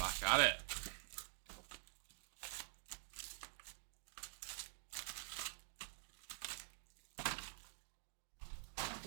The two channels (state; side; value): silent; left; digital silence